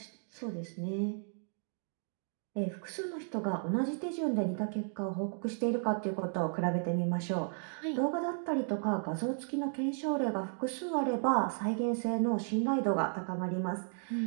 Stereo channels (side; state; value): left; silent; 55 dB below the other